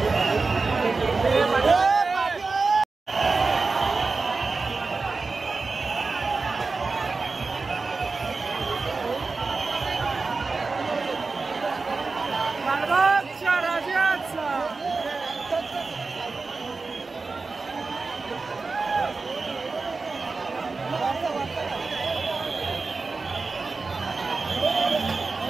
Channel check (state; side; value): quieter; left; 4.1 dB